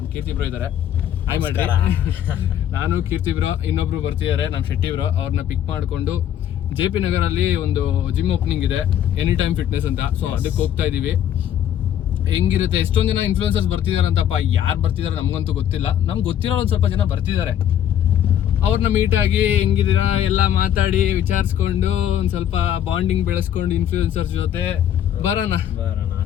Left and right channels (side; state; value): right; quieter; 10.4 dB